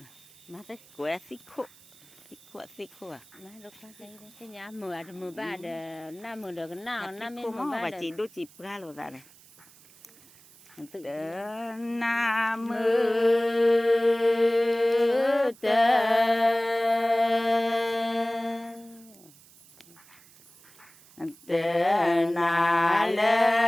mà tới của xích khô à nó lúc cái nhà mưa ba đờ năm mưa được nào năm mưa ba và chỉ đôi chỉ ra rồi ra này Nam mô Tê Na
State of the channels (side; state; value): right; noise; hiss, 25 dB below the sound